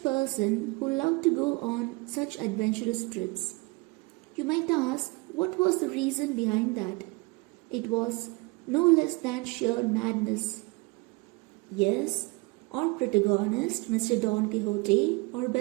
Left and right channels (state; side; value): quieter; left; 26.0 dB